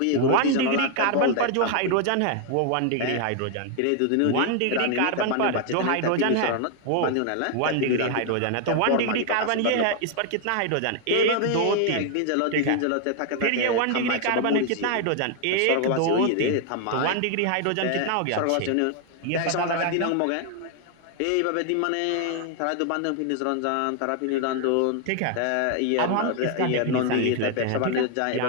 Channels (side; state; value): both; different; correlation 0.00